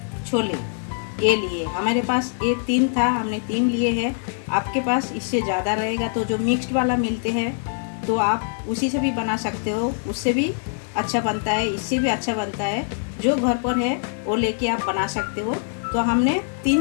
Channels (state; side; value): silent; right; 63 dB below the other